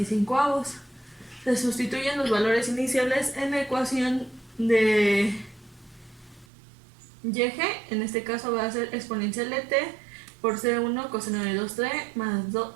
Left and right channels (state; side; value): drops out; left; at 6.5 s